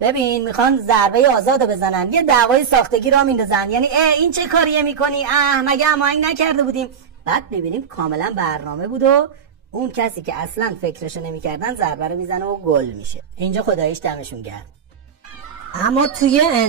ببین میخوان ضربه آزادو بزنن، یه دعوای ساختگی را میندازن، یعنی این چه کاریه میکنی، مگه هماهنگ نکرده بودیم؟ بعد ببینیم کاملا برنامه بود و اون کسی که اصلا فکرشو نمیکردن ضربه رو میزنه و گل میشه. اینجا خداییش دمشون گرم. اما توی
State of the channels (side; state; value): left; quieter; 7.2 dB